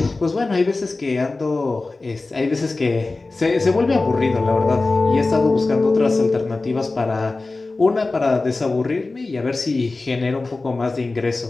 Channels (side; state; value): right; quieter; 3.4 dB